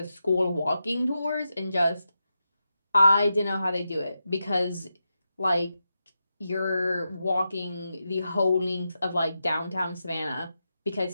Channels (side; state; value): both; inverted; correlation -0.88